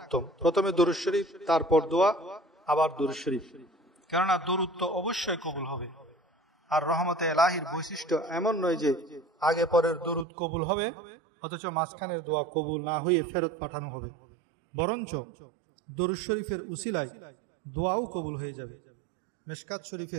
প্রথমে দরুদ শরীফ, তারপর দোয়া, আবার দরুদ শরীফ, কেননা দরুদ তো অবশ্যই কবুল হবে। আর রহমতে এলাহির বৈশিষ্ট্য এমন নয় যে আগে পরের দরুদ কবুল হবে অথচ মাঝখানের দোয়া কবুল না হয়ে ফেরত পাঠানো হবে, বরঞ্চ দরুদ শরীফের উসিলায় দোয়াও কবুল হয়ে যাবে। মিশকাত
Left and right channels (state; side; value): drops out; left; at 10.2 s